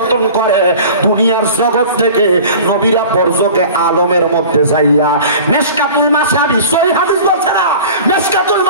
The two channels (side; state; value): both; inverted; correlation -0.40